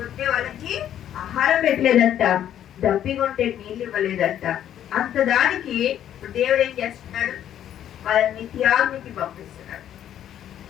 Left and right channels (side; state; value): right; quieter; 10.7 dB